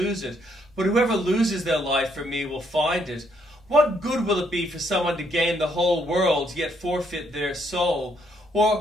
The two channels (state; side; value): normal; both; correlation 0.72